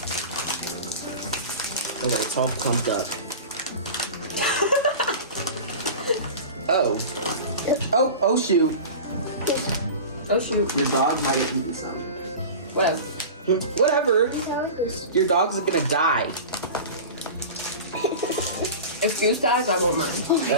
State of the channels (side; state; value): both; inverted; correlation -0.32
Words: Okay, it's all clumped up. Oh shoot. Oh shoot. Your dog might have eaten some. Whatever. Your dog's gonna die. If Juice dies, I won't mind.